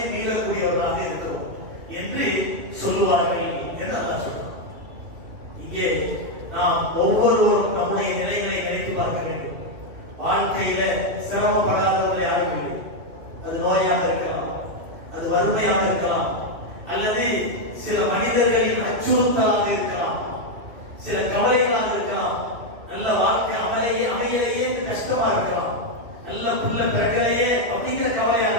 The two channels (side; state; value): left; late; 2.9 ms